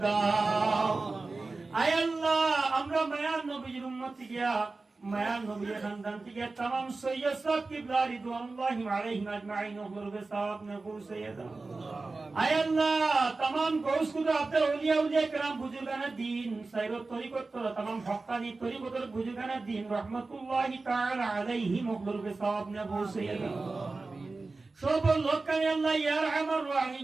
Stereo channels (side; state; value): left; quieter; 3.6 dB